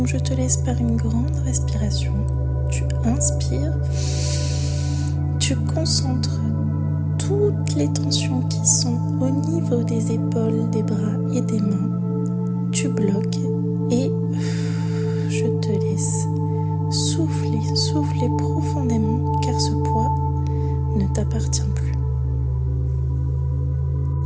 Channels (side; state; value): both; identical; correlation 1.00